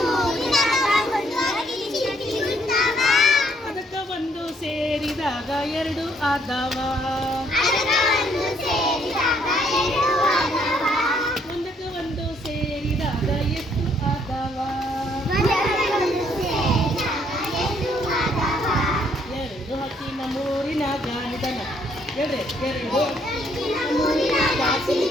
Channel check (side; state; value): both; normal; correlation 0.68